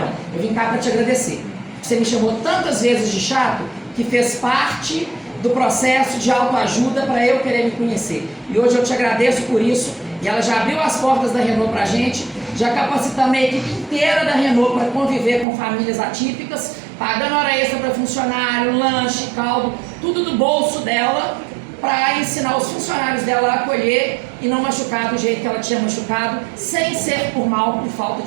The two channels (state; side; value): drops out; left; at 15.5 s